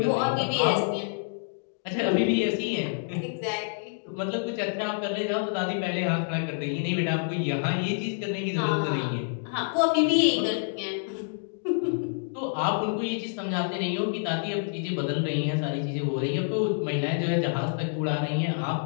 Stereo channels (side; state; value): right; silent; digital silence